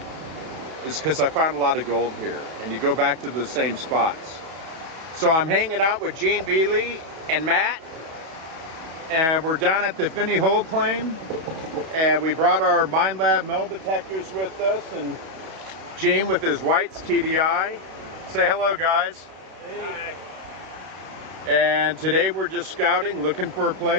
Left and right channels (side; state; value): left; late; 31 ms